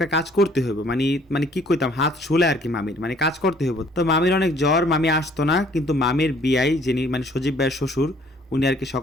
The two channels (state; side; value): normal; both; correlation 0.59